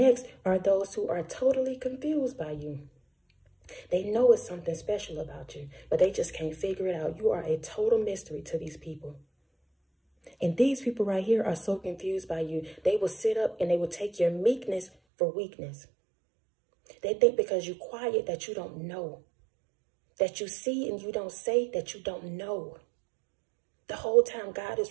are those who are totally confused by you. They know it's something special about you, but they just can't figure it out. You are a total mystery to these people. And these people right here are so confused by you. They will sit up and they will take your meekness for weakness. They think because you're quiet that you don't know. That you see and you don't say that you don't know. The whole time God is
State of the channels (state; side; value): drops out; left; at 14.9 s